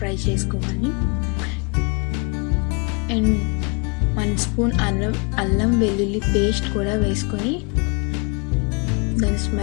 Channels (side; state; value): right; quieter; 32.3 dB